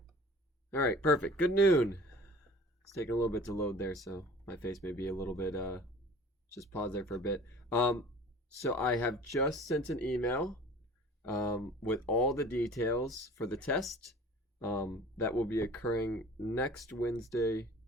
All right, perfect. Good noon. It's taking a little bit to load there, so my face may be a little bit just pause there for a bit. Um so I have just sent an email with all the details for the test that will be occurring next Wednesday,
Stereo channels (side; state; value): both; normal; correlation 0.45